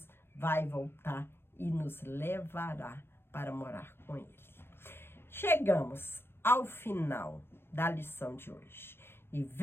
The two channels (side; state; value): right; late; 0.11 ms